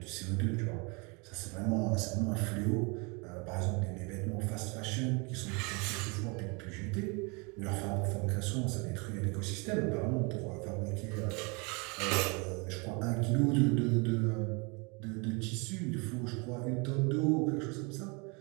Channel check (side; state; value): left; quieter; 30.6 dB